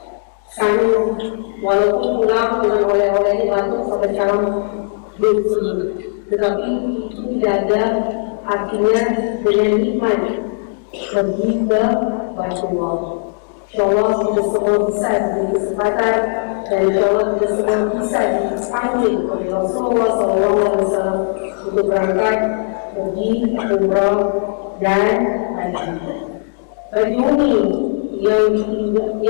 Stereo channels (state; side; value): silent; right; digital silence